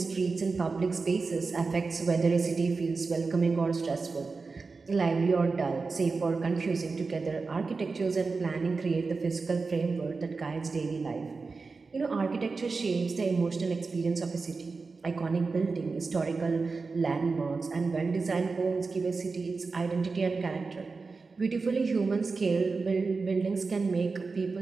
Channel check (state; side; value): quieter; left; 4.3 dB